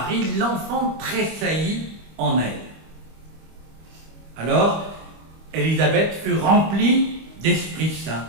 l'enfant tressaillit en elle. Alors, Élisabeth fut remplie d'Esprit Saint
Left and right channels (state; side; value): late; left; 25 ms